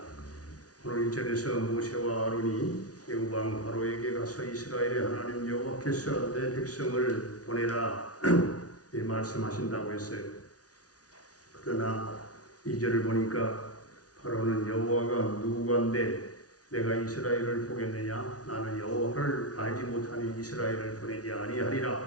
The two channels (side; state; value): right; late; 0.68 ms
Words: 오늘 1절에서 모세와 아론이 애굽왕 바로에게 가서 이스라엘의 하나님 여호와께서 내 백성을 보내라 이 말씀하신다고 했어요. 그러나 2절을 보니까 바로는 여호와가 누구간데 내가 이스라엘을 보겠느냐? 나는 여호와를 알지 못하니 이스라엘을 보내지